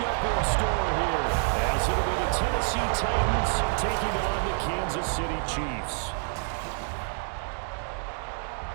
in store here, as it'll be the Tennessee Titans taking on the Kansas City Chiefs.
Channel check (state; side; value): silent; left; 59 dB below the other